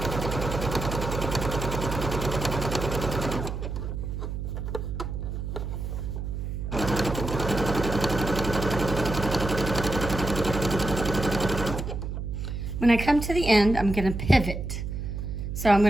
When I come to the end, I'm going to pivot. So I'm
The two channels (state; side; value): noise; right; hum, 5 dB below the sound